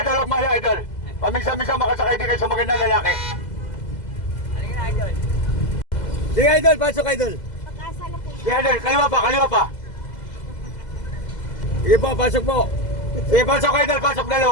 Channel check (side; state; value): right; late; 2.0 ms